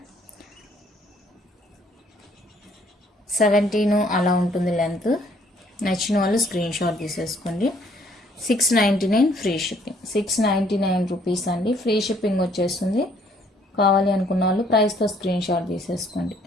17 అలా ఉంటుంది లెంత్. నచ్చిన వాళ్ళు స్క్రీన్ షాట్ తీసేసుకోండి. 699 ఫ్రీ షిప్పింగ్. 699 రూపీస్ అండి. ఫ్రీ షిప్పింగ్ వచ్చేస్తుంది. కావాలి అనుకున్న వాళ్ళు ప్రైస్తో స్క్రీన్ షాట్ తీసేసుకోండి.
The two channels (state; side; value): normal; both; correlation 0.63